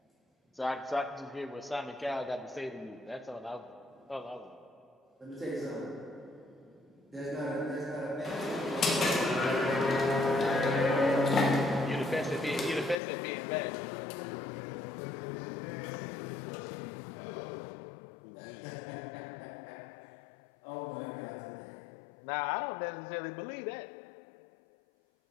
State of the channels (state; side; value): drops out; right; at 13.0 s